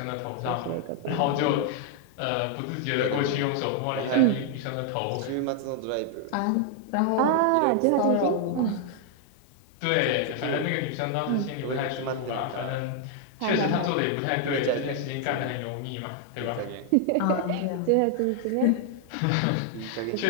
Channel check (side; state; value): both; different; correlation 0.00